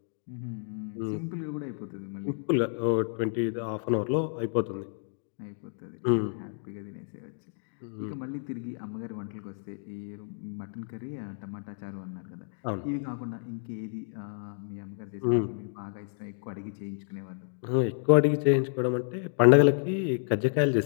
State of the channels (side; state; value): right; silent; digital silence